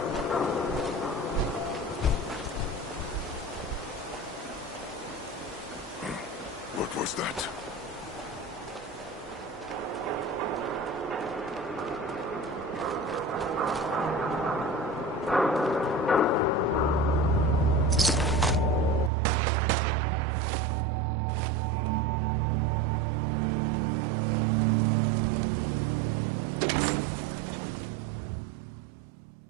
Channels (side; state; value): left; drops out; at 19.1 s